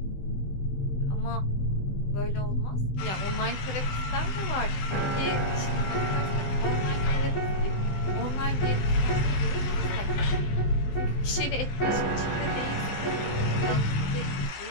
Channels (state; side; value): late; right; 16 ms